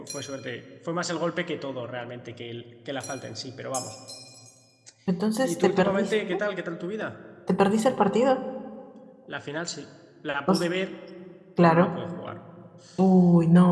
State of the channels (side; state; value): both; identical; correlation 1.00